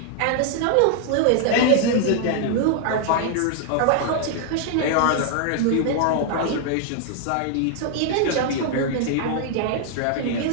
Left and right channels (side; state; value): both; different; correlation 0.00